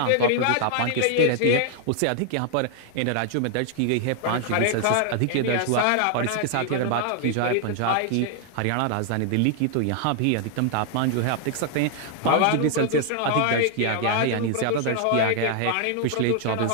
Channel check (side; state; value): both; different; correlation 0.00